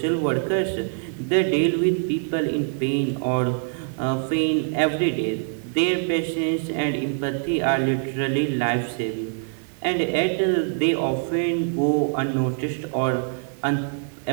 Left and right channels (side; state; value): left; silent; 60 dB below the other